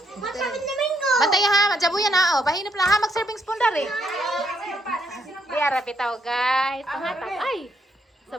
Bantay ha, madjabo yan ha. O, bahinap lang ha. Mag-serving spoon dar eh. Diara bitaw guys. Pangatap. Ay.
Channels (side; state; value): both; normal; correlation 0.75